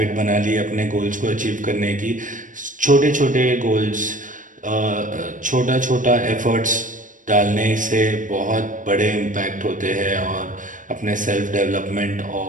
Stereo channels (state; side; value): late; left; 0.38 ms